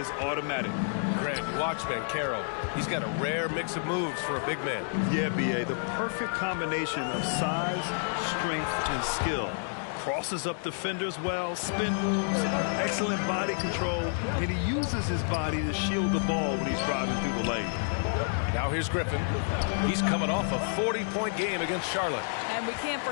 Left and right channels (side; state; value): right; silent; digital silence